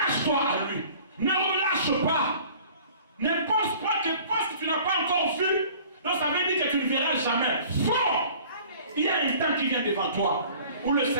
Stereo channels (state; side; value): inverted; both; correlation -0.49